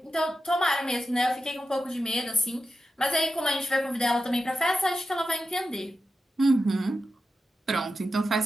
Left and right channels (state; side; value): normal; both; correlation 0.91